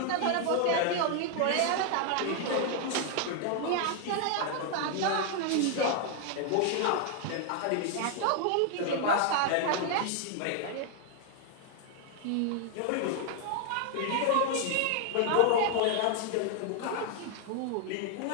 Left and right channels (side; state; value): both; different; correlation 0.00